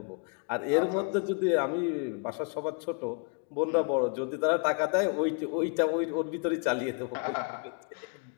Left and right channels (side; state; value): right; quieter; 34.6 dB